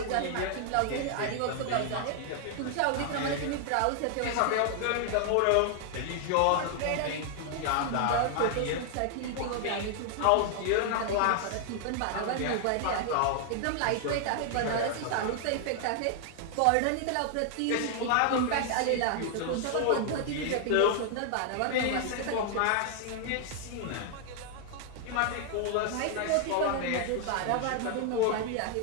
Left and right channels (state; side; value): different; both; correlation 0.00